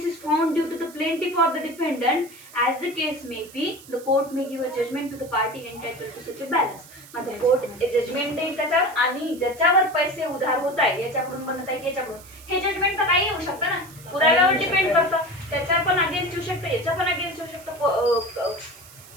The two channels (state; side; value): noise; right; hiss, 20 dB below the sound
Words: is found due to the plaintiff or the defendant, as the case may be, the court may give a judgment to the party entitled to such a balance. म्हणजे court judgement देईल त्याच्यावर, आणि ज्याच्यावर पैसे उधार होत आहे, याच्याकडून बनत आहे याच्याकडून, हे जजमेंट तर काही येऊ शकतं ना, पुराव्यावर डिपेंड करतं. त्याच्या पण अगेन्स्ट येऊ शकतं, याच्या पण अगेन्स्ट येऊ शकतं